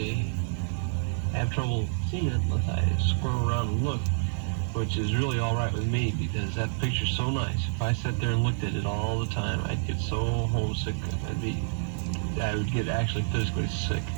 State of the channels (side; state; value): left; silent; digital silence